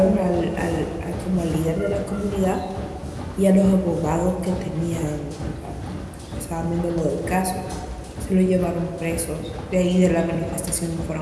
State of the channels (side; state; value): both; identical; correlation 1.00